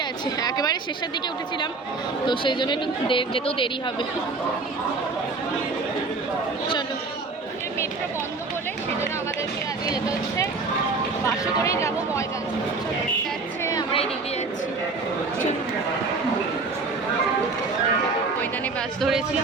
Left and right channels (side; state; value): left; quieter; 3.9 dB